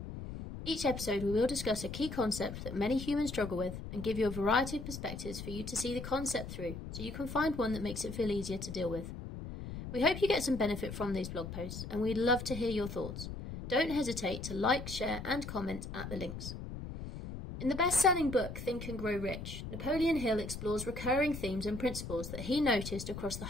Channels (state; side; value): noise; left; rumble, 8 dB below the sound